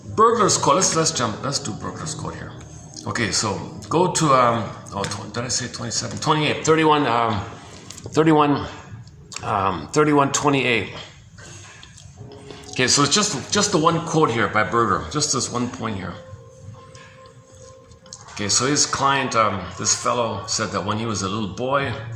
Burglar's Code, let's do Burglar's Code here. Okay, so go to, did I say 27? 28, 3128. Okay, so it's just the one quote here by Berger, just this one point here. Okay, so his client, this fellow, said that when he was a little boy,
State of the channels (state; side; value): identical; both; correlation 1.00